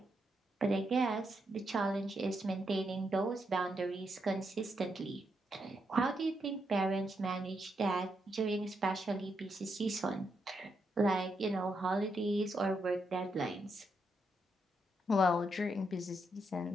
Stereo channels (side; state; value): both; normal; correlation 0.81